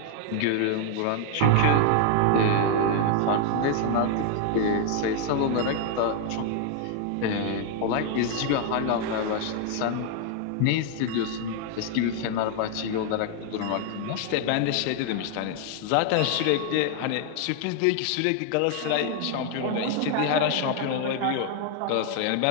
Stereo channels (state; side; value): different; both; correlation 0.00